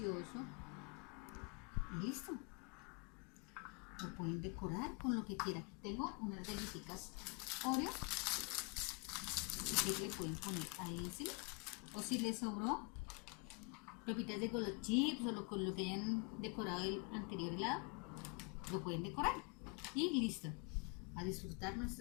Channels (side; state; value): right; quieter; 32.6 dB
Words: Y listo. Lo pueden decorar con lo que quieran. Tengo unas galletitas Oreo. Así que le pueden poner ahí encima. O si les sobró pepitas de Golo Chips o con lo que hayan decorado el anterior helado, lo pueden decorar. Y listo. A disfrutar